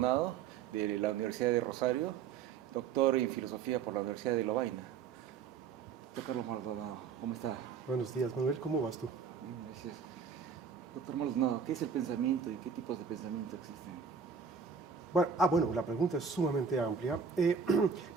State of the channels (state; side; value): quieter; left; 6.4 dB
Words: de la Universidad de Rosario, doctor en filosofía por la Universidad de Lovaina. Doctor Carlos Maldonado, ¿cómo está? Buenos días, Manuel, ¿cómo vas tú? Bien, gracias. Doctor Maldonado, ¿qué es el pensamiento y qué tipos de pensamiento existen? Bueno, la pregunta es sumamente amplia.